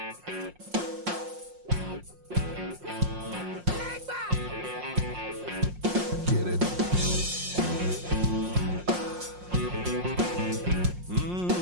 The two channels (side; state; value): left; late; 5.6 ms